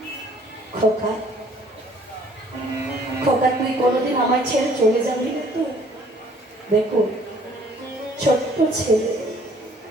খোকা, খোকা, তুই কোনোদিন আমায় ছেড়ে চলে যাবি না তো? দেখো, ছোট্ট ছেলে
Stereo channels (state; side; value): normal; both; correlation 0.58